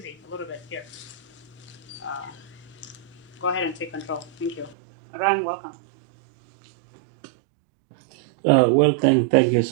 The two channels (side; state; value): left; drops out; at 4.8 s